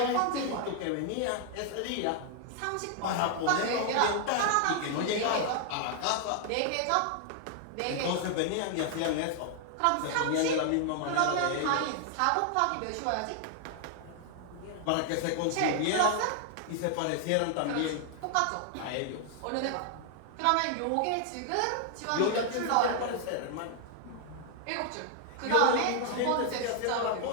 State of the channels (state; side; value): different; both; correlation 0.00